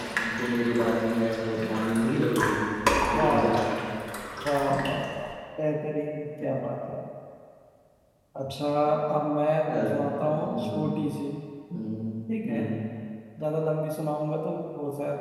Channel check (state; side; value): identical; both; correlation 1.00